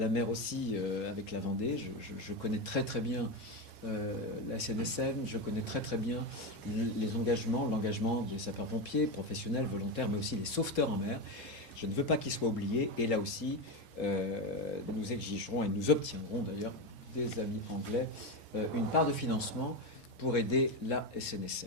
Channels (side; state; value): left; late; 2.2 ms